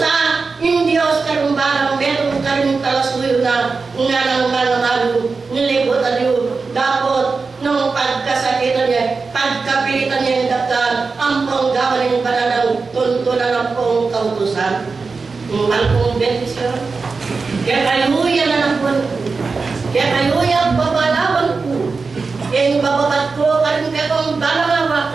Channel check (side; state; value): left; quieter; 4.4 dB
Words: yung Diyos karumbarang meron karing talasuyo na nga ng mananalo, nilibot aliyo. Dapat, nung pagkasakitan niya, pagkapilitan niya yung daktan, ang panggawa ng bananang tuntunan ng pong kautusan. Malpong bentisyon. Kaya kaluya na ng buwan ko. Kaya kaluya babalaban ko. Yung bababat ko, karin ka kong